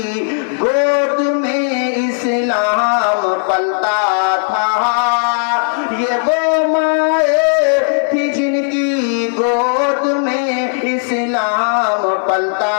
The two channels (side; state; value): right; silent; digital silence